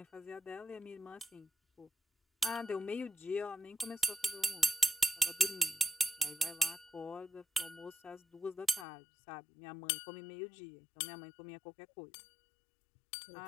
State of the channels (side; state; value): right; drops out; at 8.8 s